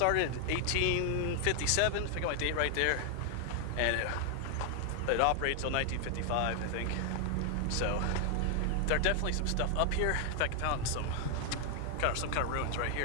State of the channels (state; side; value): different; both; correlation 0.00